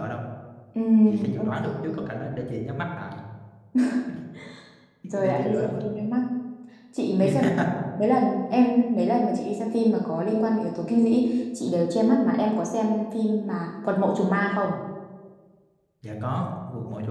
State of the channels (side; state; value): both; identical; correlation 1.00